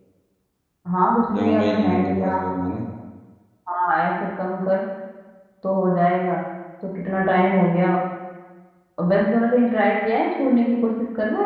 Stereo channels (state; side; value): identical; both; correlation 1.00